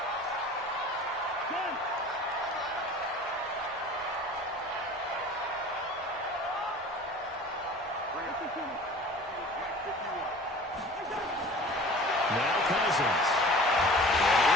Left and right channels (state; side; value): normal; both; correlation 0.43